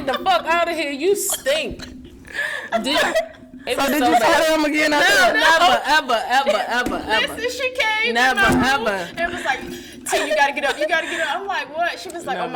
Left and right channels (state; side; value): identical; both; correlation 1.00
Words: the fuck out of here. You stink. It So was did so you bad. tell him again? No, never. Listen, she came Never, in my room ever. and was like, T, you gotta get up, you gotta get up. I'm like, what? She was like, oh my